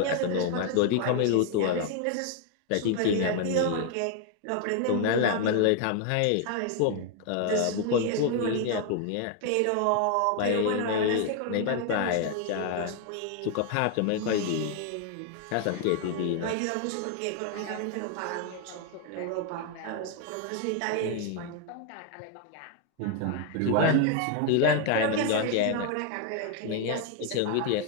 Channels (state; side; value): different; both; correlation 0.00